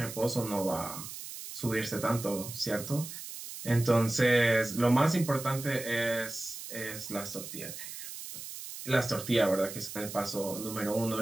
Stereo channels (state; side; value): noise; right; hiss, 10 dB below the sound